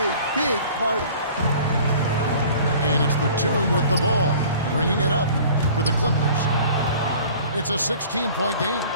big part of it. And it's Batum with the ball, bringing it up for the Clippers. It's a 16-point game.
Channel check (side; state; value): both; inverted; correlation -0.47